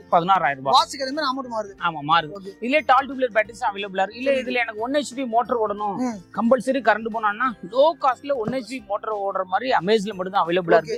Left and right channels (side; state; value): both; identical; correlation 1.00